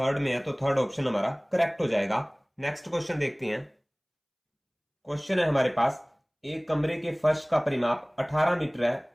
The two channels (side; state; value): both; identical; correlation 1.00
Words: में है। तो थर्ड ऑप्शन हमारा करेक्ट हो जाएगा। नेक्स्ट क्वेश्चन देखते हैं। क्वेश्चन है हमारे पास, एक कमरे के फर्श का परिमाप 18 मीटर है,